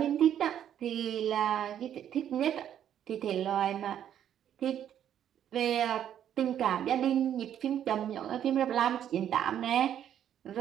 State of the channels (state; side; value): quieter; left; 10.1 dB